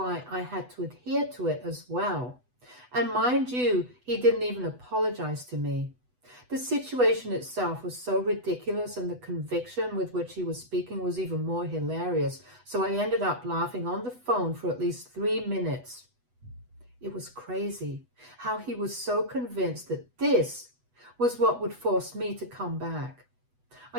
I had to adhere to it as well. And mind you, he didn't even apologize to me. The situation itself was so ridiculous, and the conviction with which he was speaking was even more hilarious. So I ended up laughing on the phone for at least 3 minutes. It was crazy how he was so convinced that this was what would force me to come back.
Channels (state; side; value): late; left; 8.1 ms